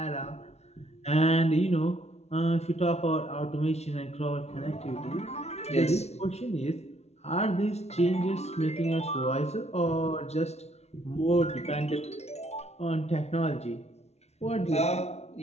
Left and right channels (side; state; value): right; late; 0.31 ms